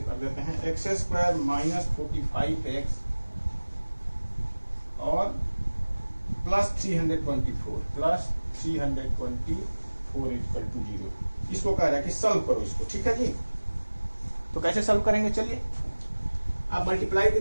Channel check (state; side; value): inverted; both; correlation -1.00